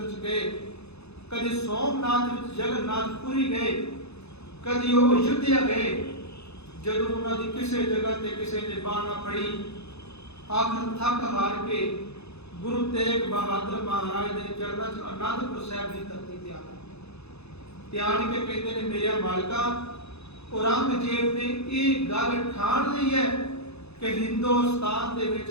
'ਚ ਗਏ, ਕਦੀ ਸੋਮਨਾਥ ਵਿੱਚ ਜਗਨਨਾਥਪੁਰੀ ਗਏ, ਕਦੀ ਉਹ ਅਯੁੱਧਿਆ ਗਏ। ਜਦੋਂ ਉਹਨਾਂ ਦੀ ਕਿਸੇ ਜਗ੍ਹਾ ਤੇ ਕਿਸੇ ਨੇ ਬਾਹ ਨਾ ਫੜੀ, ਆਖਰ ਥੱਕ ਹਾਰ ਕੇ ਗੁਰੂ ਤੇਗ ਬਹਾਦਰ ਮਹਾਰਾਜ ਦੇ ਚਰਨਾਂ 'ਚ ਅਨੰਦਪੁਰ ਸਾਹਿਬ ਦੀ ਧਰਤੀ ਤੇ ਆ ਕੇ ਕਹਿੰਦੇ ਨੇ, ਮੇਰਿਆ ਮਾਲਕਾ, ਔਰੰਗਜ਼ੇਬ ਨੇ ਇਹ ਗੱਲ ਠਾਣ ਲਈ ਹੈ ਕਿ ਹਿੰਦੁਸਤਾਨ ਦੇ ਵਿੱਚ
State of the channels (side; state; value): right; late; 0.79 ms